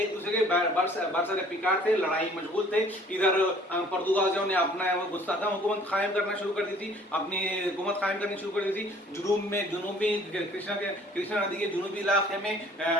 दूसरे के बरसरे पिकार थे, लड़ाई मशगूल थे। इधर पुर्तगालियों ने अपना मुस्तहकम हुकूमत कायम करना शुरू कर दी थी, अपनी हुकूमत कायम करनी शुरू कर दी थी। जुनूबी कृष्णा नदी के जुनूबी इलाके में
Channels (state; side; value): normal; both; correlation 0.54